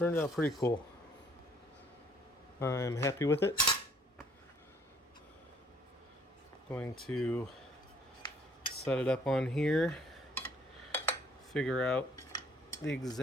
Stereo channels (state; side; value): normal; both; correlation 0.62